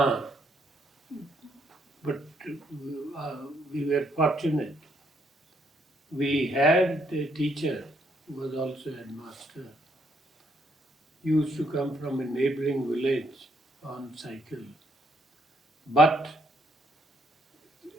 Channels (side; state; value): both; normal; correlation 0.72